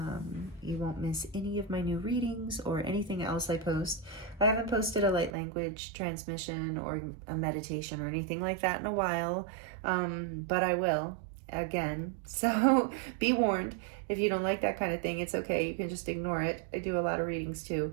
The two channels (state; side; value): drops out; left; at 5.3 s